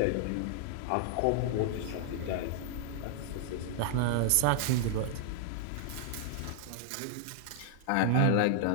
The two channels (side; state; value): both; different; correlation -0.01